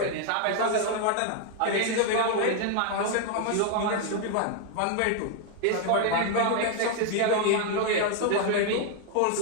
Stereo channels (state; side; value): different; both; correlation 0.00